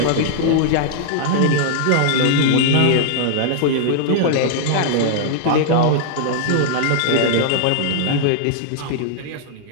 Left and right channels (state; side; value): different; both; correlation -0.01